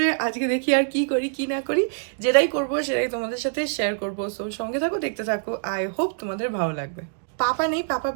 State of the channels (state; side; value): silent; left; digital silence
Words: আজকে দেখি আর কি করি কি না করি, যেটাই করবো সেটাই তোমাদের সাথে শেয়ার করবো। সো সঙ্গে থাকো, দেখতে থাকো, আই হোপ তোমাদের ভালো লাগবে। পাপা নেই, পাপা